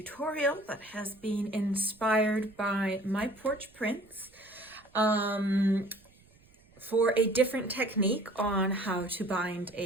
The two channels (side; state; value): right; noise; rumble, 29 dB below the sound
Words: that has been inspired by my porch prints for a different technique on how to bind